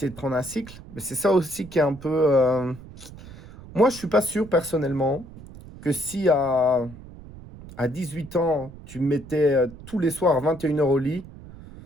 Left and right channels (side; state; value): right; noise; rumble, 17 dB below the sound